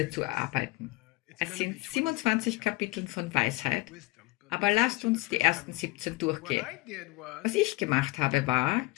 zu erarbeiten. Es sind 27 Kapitel von Weisheit, aber lasst uns die ersten 17 durchgehen. Was ich gemacht habe, war,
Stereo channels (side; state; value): right; quieter; 21.4 dB